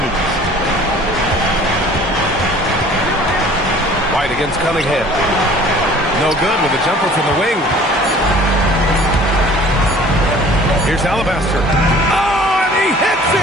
White against Cunningham. No good with a jumper from the wing. Here's Alabaster. Oh, and he hits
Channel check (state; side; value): normal; both; correlation 0.50